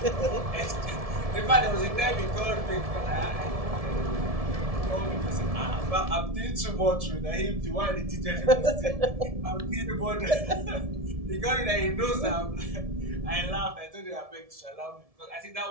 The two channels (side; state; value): left; late; 1.7 ms